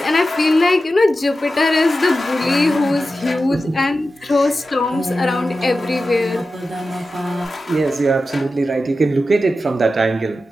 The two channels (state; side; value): normal; both; correlation 0.92